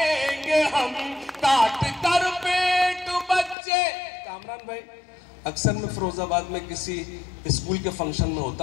हम, काट कर पेट बच्चे। कामरान भाई, अक्सर मैं फिरोजाबाद में किसी स्कूल के फंक्शन में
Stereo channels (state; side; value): drops out; right; at 3.6 s